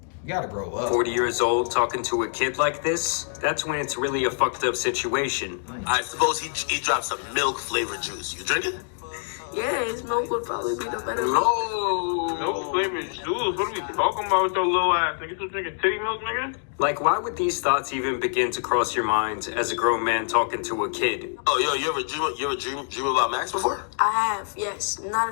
You gotta grow up. 40 years old talking to a kid like this, that's when it's really a fucked up situation. I suppose he dropped some milk flavored juice. You drink it? Yeah, his milk would probably be the better. No flavored juice. What are we talking about with your little ass? Nigga, you drinking titty milk, nigga? Like, why would these thoughts even begin to cross your mind as a grown man talking to a kid? Oh, yo, you ever dream about Max before? I have, yes.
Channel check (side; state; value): right; silent; digital silence